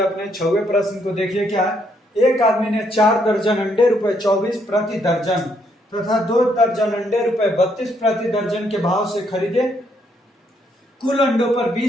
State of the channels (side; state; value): both; normal; correlation 0.73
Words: हैं अपने 6वें प्रश्न को। देखिए क्या है, एक आदमी ने 4 दर्जन अंडे रुपए 24 प्रति दर्जन तथा 2 दर्जन अंडे रुपए 32 प्रति दर्जन के भाव से खरीदे। कुल अंडों पर